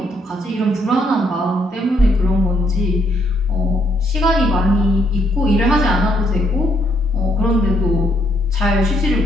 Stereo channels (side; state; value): both; normal; correlation 0.73